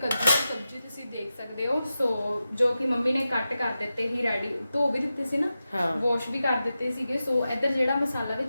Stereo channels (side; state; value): both; inverted; correlation -0.92